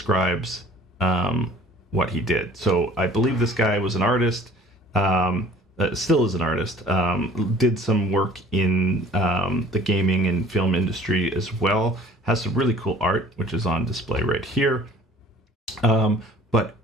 what he did. So I believe this guy was an artist, still is an artist, did some work in the gaming and film industry as well, has some really cool art, which is on display right here. But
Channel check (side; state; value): both; normal; correlation 0.50